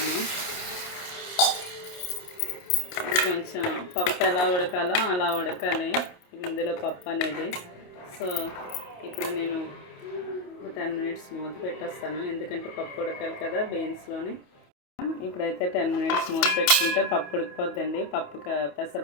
కొంచెం పప్పు ఎలా ఉడకాలో అలా ఉడకాలి ఇందులో పప్పు అనేది. సో ఇప్పుడు నేను 10 మినిట్స్ మూత పెట్టేస్తాను, ఎందుకంటే పప్పు ఉడకాలి కదా బీన్స్లోని. ఇప్పుడైతే 10 మినిట్స్ మూత పెట్టుకుంటే పప్పు ఉడికిపోద్దండి.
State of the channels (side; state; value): right; late; 28 ms